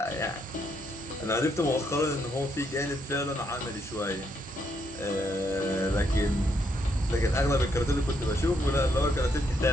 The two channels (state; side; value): normal; both; correlation 0.75